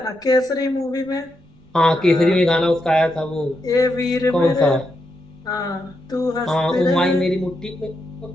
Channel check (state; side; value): noise; right; rumble, 29 dB below the sound